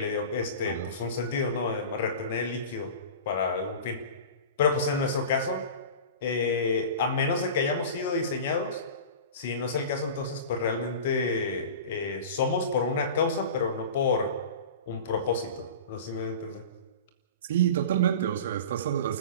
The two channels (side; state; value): both; inverted; correlation -0.34